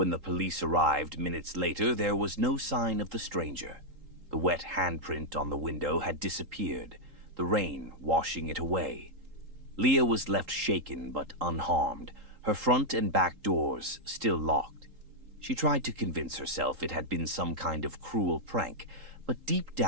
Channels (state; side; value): late; left; 3.8 ms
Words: the police arrived minutes later, there was no sign of the stranger. The wet handprint on the window had disappeared, the rain washing it away. Leah was left shaken but unharmed, her front and back doors still locked. She tried to convince herself it had been some kind of cruel prank, but deep